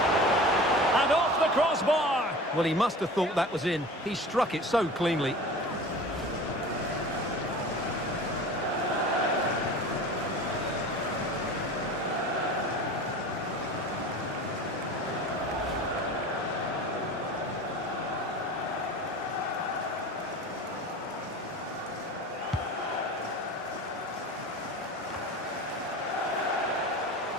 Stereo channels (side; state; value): both; normal; correlation 0.37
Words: And off the crossbar. Well, he must have thought that was in. He struck it so cleanly.